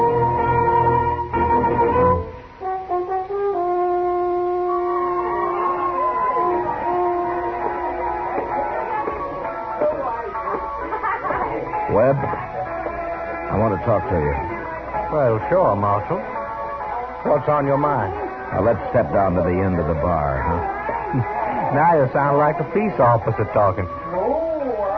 Webb, I want to talk to you. Well, sure, Marshal. What's on your mind? Now, let's step down to the end of the bar, huh? Now you sound like a peace officer talking.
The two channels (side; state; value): both; identical; correlation 1.00